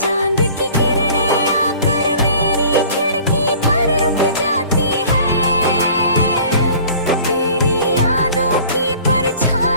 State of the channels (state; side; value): inverted; both; correlation -0.48